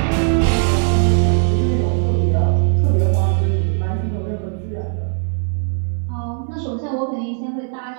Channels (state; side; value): silent; left; 57 dB below the other